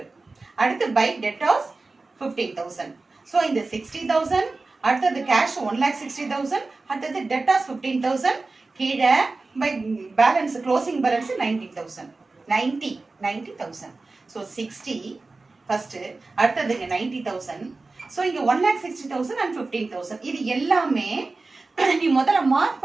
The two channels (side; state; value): left; quieter; 3.6 dB